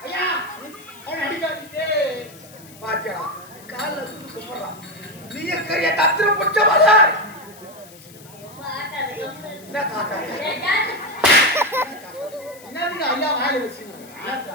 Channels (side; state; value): left; noise; hiss, 21 dB below the sound